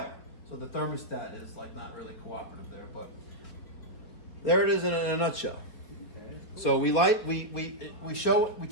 So the thermostat is like not really cooperative there, but there it is in a nutshell. So we test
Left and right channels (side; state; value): right; late; 4.7 ms